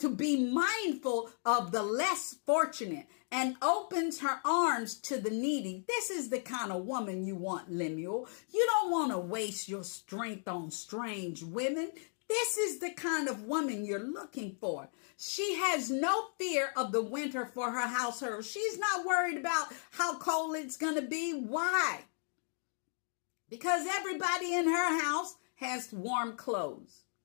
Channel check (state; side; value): silent; right; 54 dB below the other